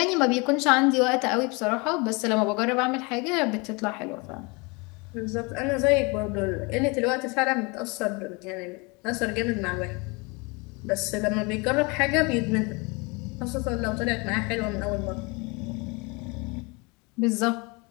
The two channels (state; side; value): quieter; right; 28.5 dB